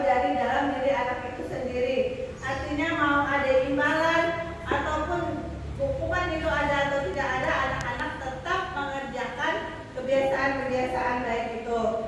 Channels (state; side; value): identical; both; correlation 1.00